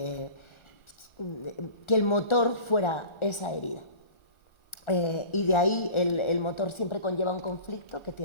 el motor fuera esa herida, y de ahí el motor siempre conlleva un conflicto que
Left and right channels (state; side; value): late; right; 1.4 ms